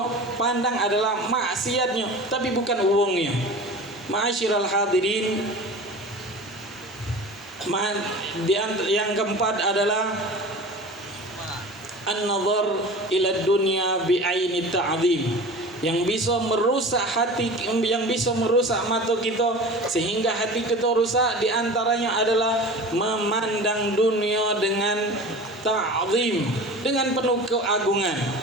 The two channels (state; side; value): normal; both; correlation 0.36